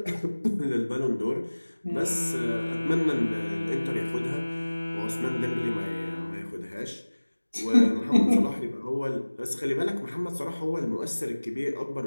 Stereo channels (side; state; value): both; inverted; correlation -1.00